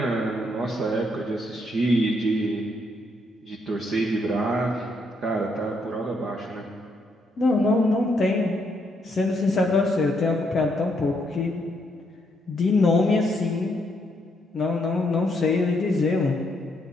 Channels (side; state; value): both; normal; correlation 0.75